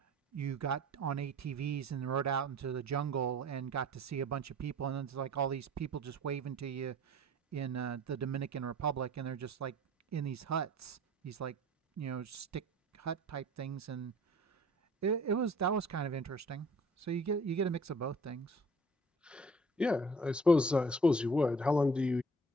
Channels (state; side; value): normal; both; correlation 0.49